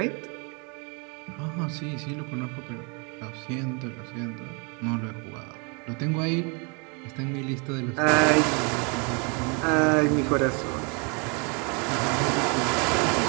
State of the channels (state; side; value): quieter; left; 33.5 dB